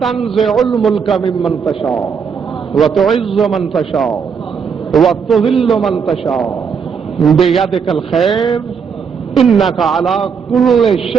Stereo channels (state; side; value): quieter; left; 6.4 dB